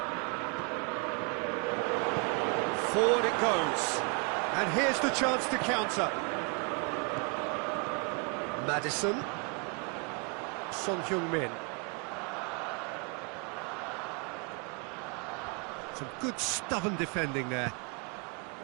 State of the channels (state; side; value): quieter; left; 35.4 dB